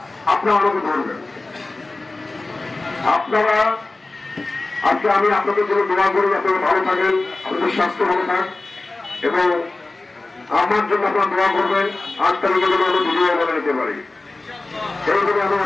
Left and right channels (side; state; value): right; quieter; 3.2 dB